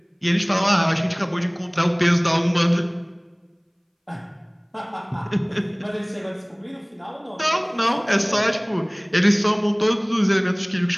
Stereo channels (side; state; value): both; identical; correlation 1.00